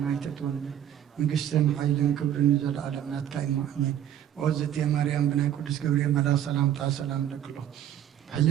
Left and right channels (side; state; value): left; quieter; 10.7 dB